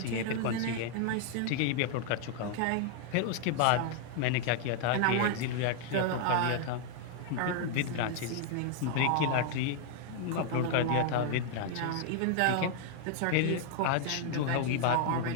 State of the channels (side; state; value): both; different; correlation 0.00